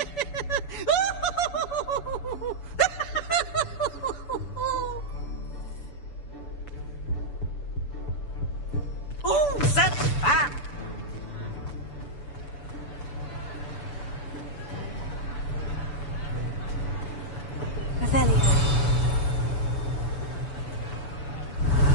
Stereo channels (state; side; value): late; right; 6.9 ms